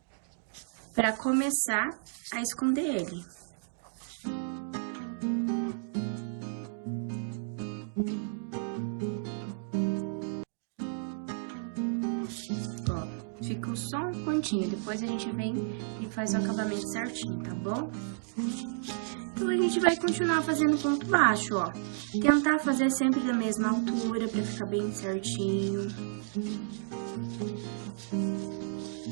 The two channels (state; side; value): silent; left; digital silence